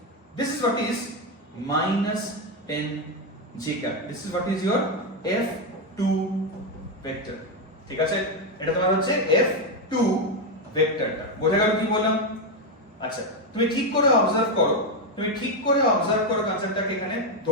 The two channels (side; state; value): both; normal; correlation 0.07